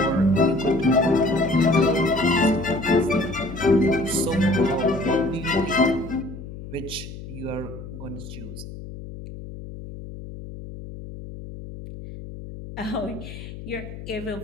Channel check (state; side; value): noise; left; hum, 12 dB below the sound